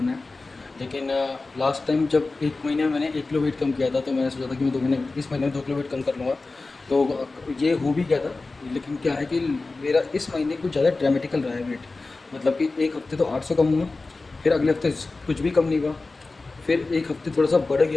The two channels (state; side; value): quieter; right; 3.5 dB